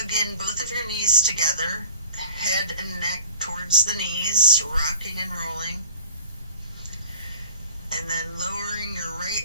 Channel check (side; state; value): both; inverted; correlation -0.44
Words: in both of your knees together. Head and neck towards the knees, rocking and rolling. And then lowering your